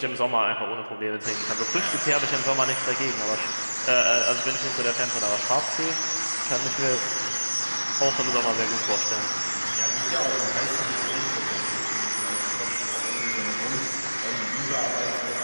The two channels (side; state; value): both; inverted; correlation -1.00